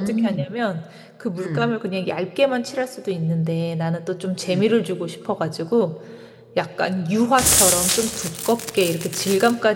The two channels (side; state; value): both; identical; correlation 1.00